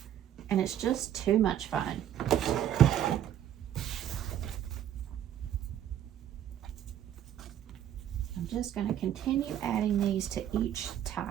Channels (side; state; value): left; quieter; 10.8 dB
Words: and it's just too much fun. I'm just going to continue adding these to each